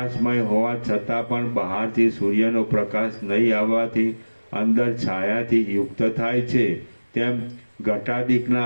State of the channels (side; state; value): both; inverted; correlation -1.00